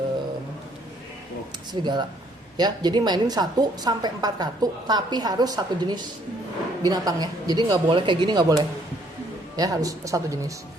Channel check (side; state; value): both; normal; correlation 0.65